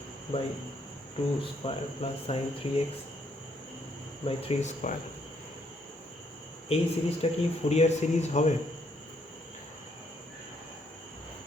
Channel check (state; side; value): normal; both; correlation 0.71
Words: by 2 square plus sin 3x by 3 square। এই সিরিজটা কি ফুরিয়ার সিরিজ হবে?